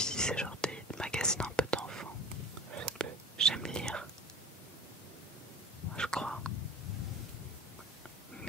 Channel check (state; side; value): normal; both; correlation 0.36